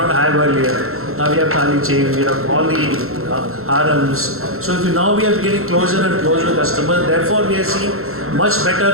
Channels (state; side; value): late; left; 0.62 ms